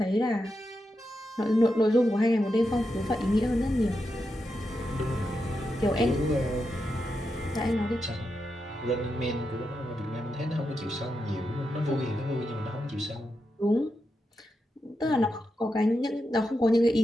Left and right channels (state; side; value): normal; both; correlation 0.87